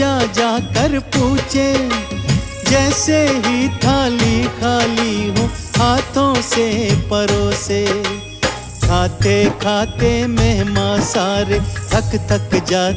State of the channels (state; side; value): identical; both; correlation 1.00